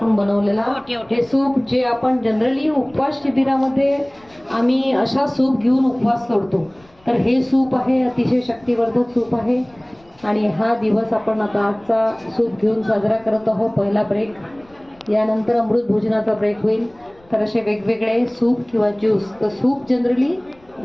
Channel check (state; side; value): noise; left; rumble, 30 dB below the sound